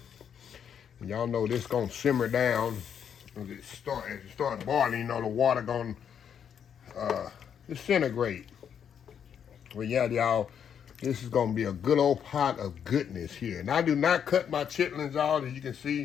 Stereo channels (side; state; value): right; quieter; 8.2 dB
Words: Y'all know this gonna simmer down as it start boiling. You know the water gonna disintegrate. Well, yeah, y'all, this is gonna be a good old pot of goodness here. And I do not cut my chitlins out, as you can